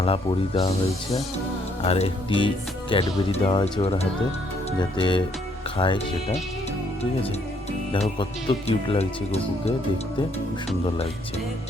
পরিয়ে দেওয়া হয়েছে, আর একটি ক্যাডবেরি দেওয়া হয়েছে ওর হাতে, যাতে খায় সেটা। ঠিক আছে, দেখো কত কিউট লাগছে গপুকে দেখতে, খুব সুন্দর লাগছে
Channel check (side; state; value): both; normal; correlation 0.69